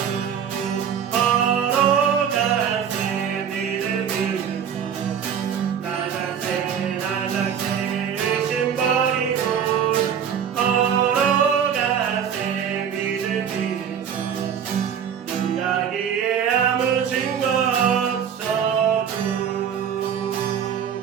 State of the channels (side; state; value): left; quieter; 8.1 dB